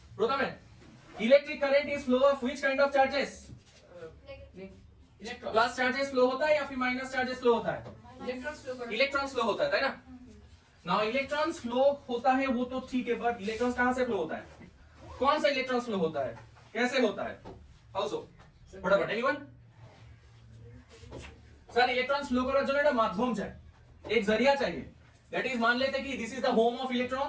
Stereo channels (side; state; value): both; identical; correlation 1.00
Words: প্রথমে electric current is flow of which kind of charges electron plus charges flow होता है या फिर माइनस चार्जेस फ्लो होता है इलेक्ट्रॉन्स फ्लो होता है ना नाउ इलेक्ट्रॉन्स फ्लो होता है वो तो ठीक है बट इलेक्ट्रॉन्स कहां से फ्लो होता है कौन सा इलेक्ट्रॉन्स फ्लो होता है कैसे होता है हाउ सो फटाफट एनीवन सर इलेक्ट्रॉन्स फ्लो করার জন্য একটা মাধ্যম চাই एक जरिया चाहिए दैट इज मान लेते कि this is the home of